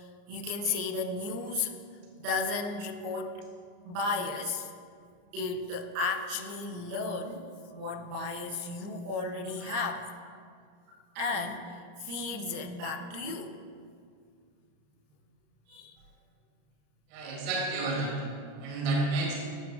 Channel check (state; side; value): late; left; 34 ms